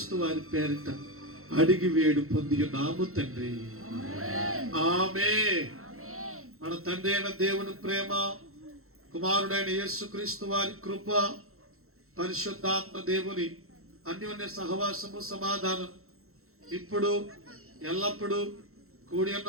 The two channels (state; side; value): late; left; 0.63 ms